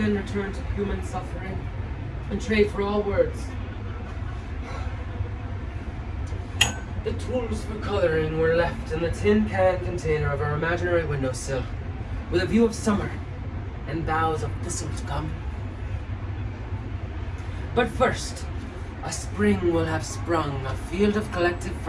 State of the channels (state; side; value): identical; both; correlation 1.00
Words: return to human suffering and trade for all words. The tools for coloring were left in the tin can container of our imaginary windowsill, with a view of summer and boughs of thistle to come. But first, a spring will have sprung, a field of collective